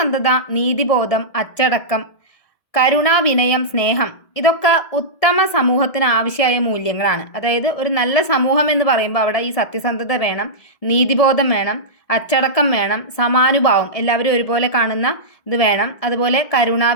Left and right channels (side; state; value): right; late; 1.7 ms